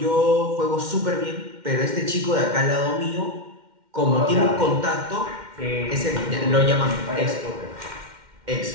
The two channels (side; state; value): left; late; 2.1 ms